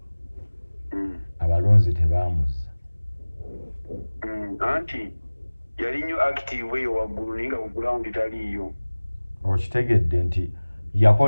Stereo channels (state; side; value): inverted; both; correlation -1.00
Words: abalonzi tebaamuzza anti yali nnyo active eyo waggulu naye nga ku ground taliiyo okitegedde nti